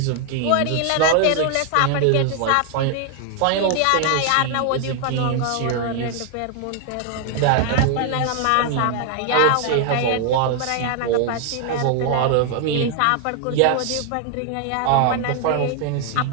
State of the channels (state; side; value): different; both; correlation 0.00